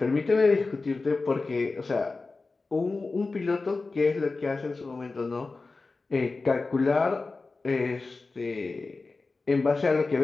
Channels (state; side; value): quieter; right; 3.8 dB